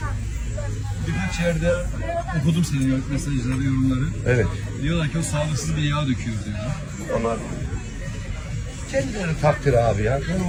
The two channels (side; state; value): both; identical; correlation 1.00